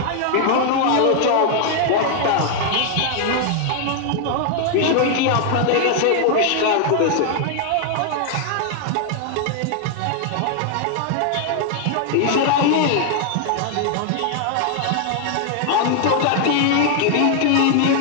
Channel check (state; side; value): different; both; correlation 0.00